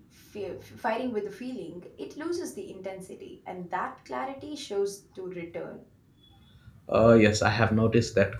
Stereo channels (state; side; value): identical; both; correlation 1.00